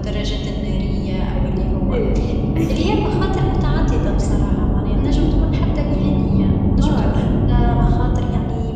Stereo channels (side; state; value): both; identical; correlation 1.00